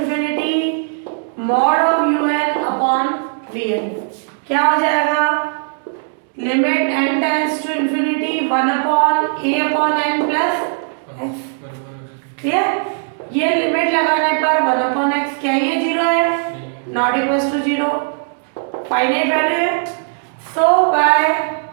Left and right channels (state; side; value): silent; left; digital silence